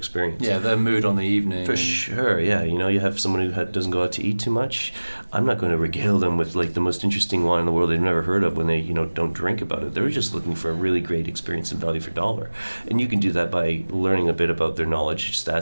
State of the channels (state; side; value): inverted; both; correlation -1.00